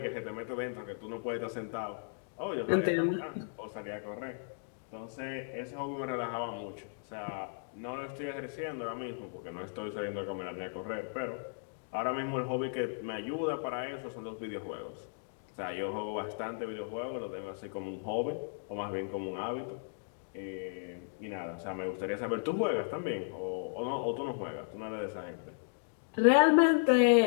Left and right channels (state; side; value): silent; right; digital silence